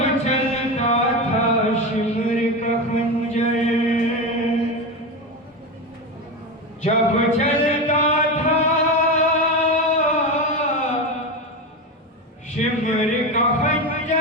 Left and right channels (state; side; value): normal; both; correlation 0.19